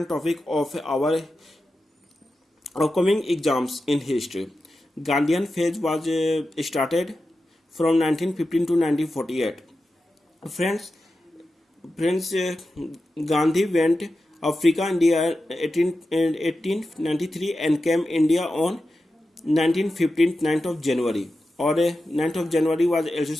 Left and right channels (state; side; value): normal; both; correlation 0.91